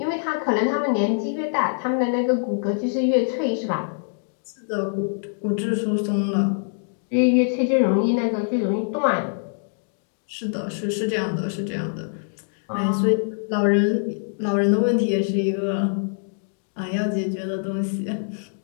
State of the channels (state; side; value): silent; right; digital silence